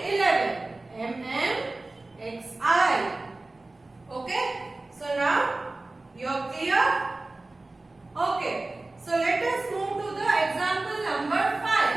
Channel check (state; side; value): quieter; left; 3.0 dB